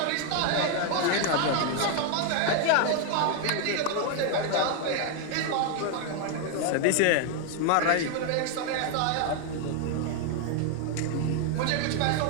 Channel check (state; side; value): different; both; correlation 0.00